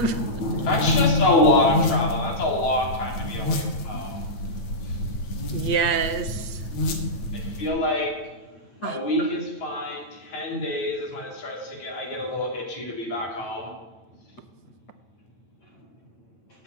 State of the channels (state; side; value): late; right; 8.9 ms